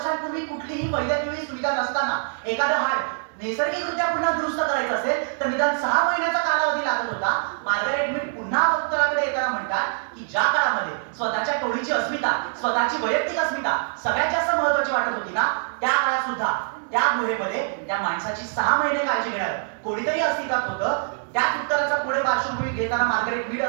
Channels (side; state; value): left; silent; digital silence